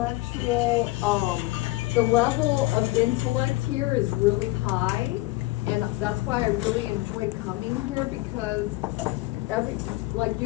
the level of intellect here is really high, and that's why I really enjoy coming here because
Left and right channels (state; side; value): quieter; right; 20.1 dB